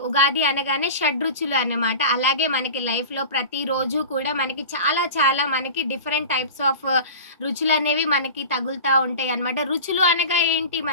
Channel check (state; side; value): inverted; both; correlation -0.34